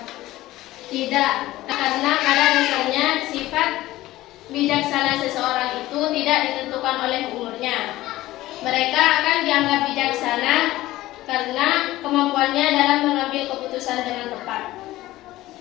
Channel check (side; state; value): right; quieter; 16.6 dB